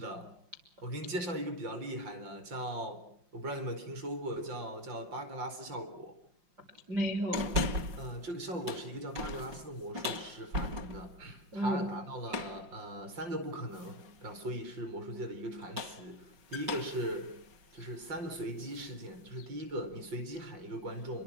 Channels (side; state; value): left; late; 5.6 ms